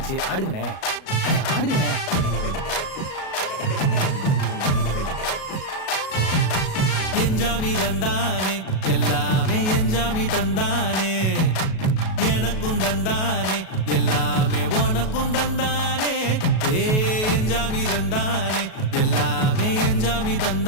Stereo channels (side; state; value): right; late; 37 ms